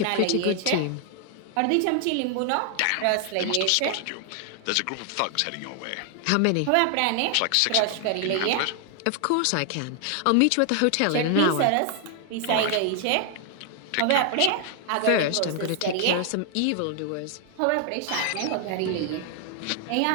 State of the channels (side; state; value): both; different; correlation 0.00